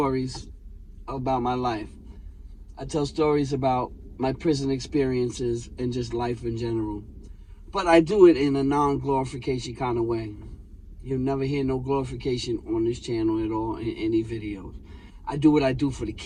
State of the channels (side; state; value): both; identical; correlation 1.00